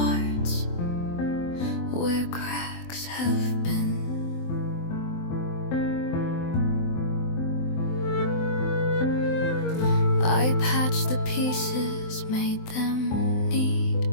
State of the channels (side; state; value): right; late; 23 ms